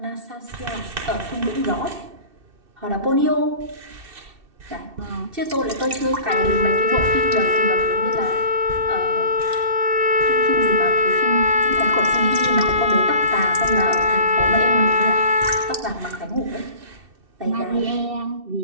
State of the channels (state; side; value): late; left; 2.7 ms